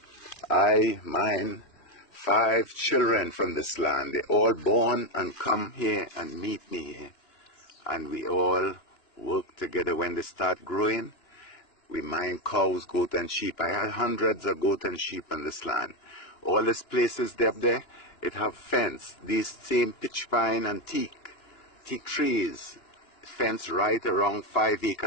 I mine 5 children from this land. They all born and come here and meet me here. And we all work together. When they start growing, we mine cows, goat and sheep. I had hundreds of goat and sheep on this land. All these places up there, it have fence. These same pitch pine and teak trees, fence right around 5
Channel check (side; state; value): right; late; 2.9 ms